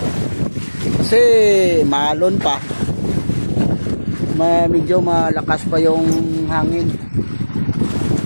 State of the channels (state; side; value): inverted; both; correlation -1.00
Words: Kasi maalon pa. Medyo malakas pa yung hangin.